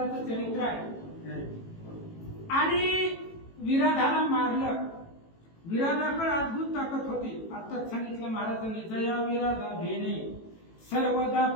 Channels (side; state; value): right; late; 18 ms